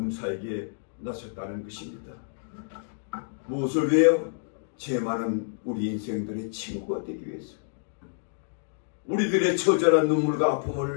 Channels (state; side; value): silent; right; digital silence